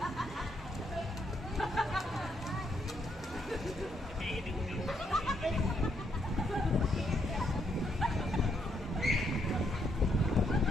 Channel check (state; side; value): normal; both; correlation 0.75